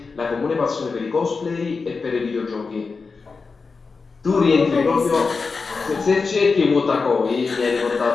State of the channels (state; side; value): quieter; right; 4.6 dB